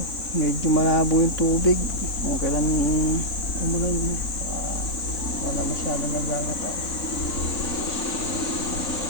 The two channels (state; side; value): late; right; 3.8 ms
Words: Medyo malabo yung tubig. Kung kailan umulan wala masyado nagagataw.